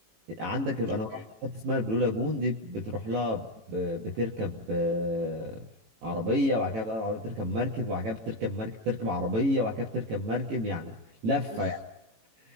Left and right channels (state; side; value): late; left; 18 ms